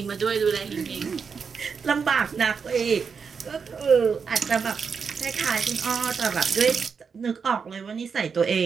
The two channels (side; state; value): left; quieter; 5.9 dB